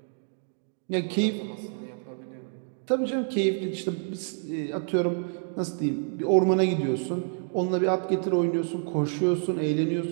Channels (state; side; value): silent; left; 59 dB below the other